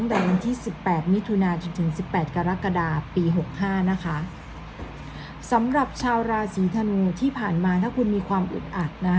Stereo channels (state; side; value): identical; both; correlation 1.00